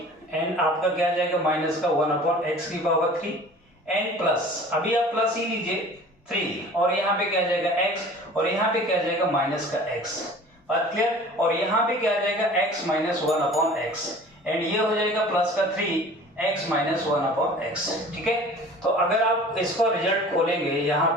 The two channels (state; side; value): normal; both; correlation 0.44